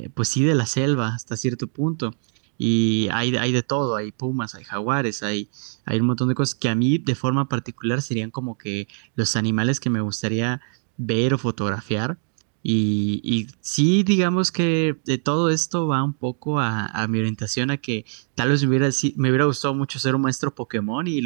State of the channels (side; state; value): left; silent; 57 dB below the other